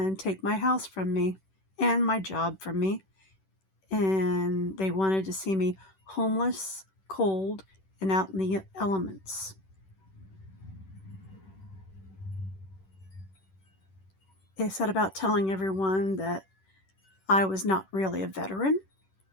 take my house from me and my job from me. And they wanted to see me homeless, cold, and out in the elements. They set about telling everyone that I was not really a veteran.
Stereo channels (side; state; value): right; late; 10 ms